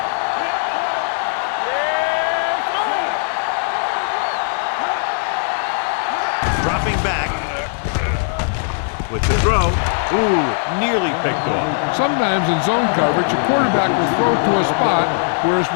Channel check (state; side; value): silent; right; 63 dB below the other